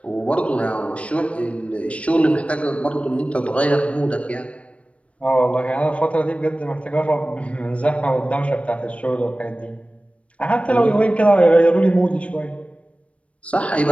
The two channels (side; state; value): right; late; 0.063 ms